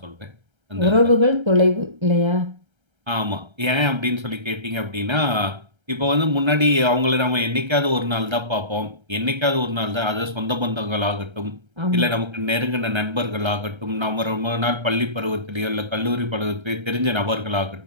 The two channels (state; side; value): late; left; 1.3 ms